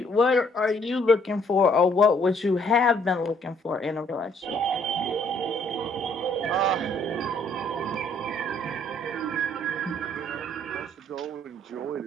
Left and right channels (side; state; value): both; normal; correlation 0.65